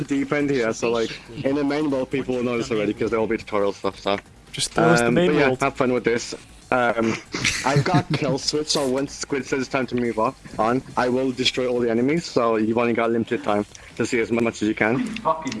deep end here. So like in the main world people will know this already because there will be tutorial stuff. So just throw us the main world. Have fun with this. I've got a kill switch, so once Squid says it's time to move on, I will destroy all the enemies, so you've only got limited time to see as much as you can.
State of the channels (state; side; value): identical; both; correlation 1.00